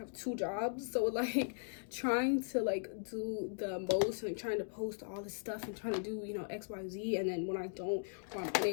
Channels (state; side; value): silent; right; digital silence